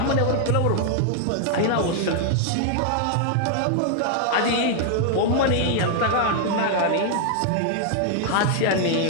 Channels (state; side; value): different; both; correlation 0.00